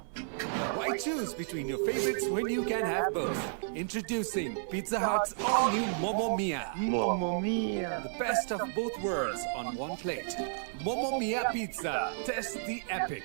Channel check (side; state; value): left; silent; 56 dB below the other